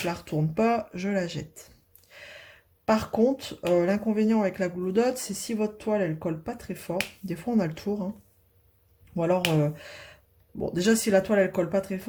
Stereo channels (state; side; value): identical; both; correlation 1.00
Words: la retourne pas, je la jette. Par contre, l'inconvénient avec la Glue Dot, c'est si votre toile elle colle pas très fort. Des fois on a le tour. Hein. Ou alors, bon déjà si la toile elle colle pas très